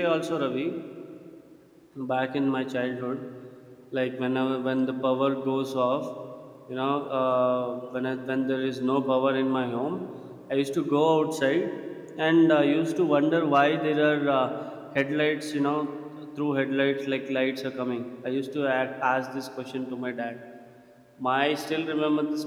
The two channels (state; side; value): identical; both; correlation 1.00